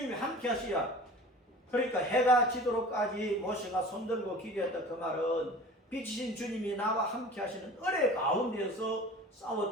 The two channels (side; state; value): both; normal; correlation 0.41